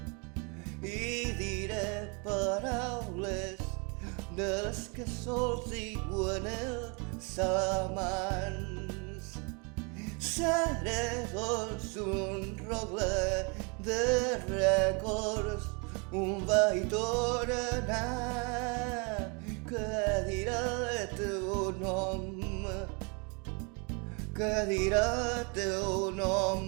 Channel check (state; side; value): quieter; left; 33.0 dB